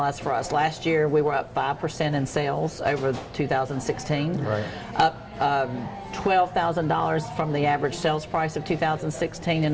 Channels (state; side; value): identical; both; correlation 1.00